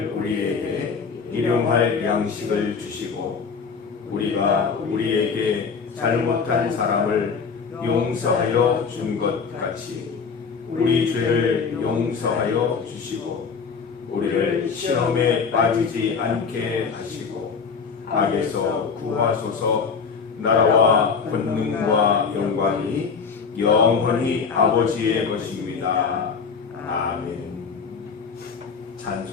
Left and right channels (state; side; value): quieter; right; 5.6 dB